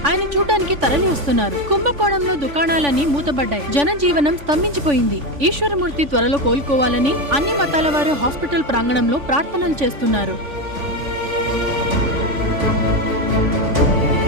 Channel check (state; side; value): late; left; 3.5 ms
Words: ఆయన చూడ్డానికి తరలి వస్తున్నారు. కుంభకోణంలో దుకాణాలన్నీ మూతబడ్డాయి. జనజీవనం స్తంభించిపోయింది. ఈశ్వరమూర్తి త్వరలో కోలుకోవాలని అన్ని మతాల వారు హాస్పిటల్ ప్రాంగణంలో ప్రార్థనలు చేస్తున్నారు.